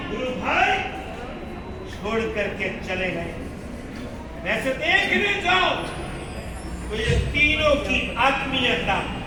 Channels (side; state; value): both; identical; correlation 1.00